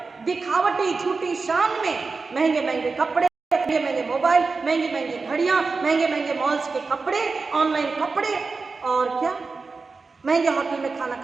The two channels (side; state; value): left; quieter; 4.3 dB